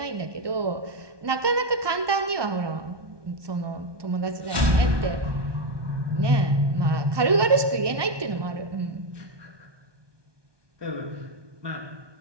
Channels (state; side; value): late; left; 1.2 ms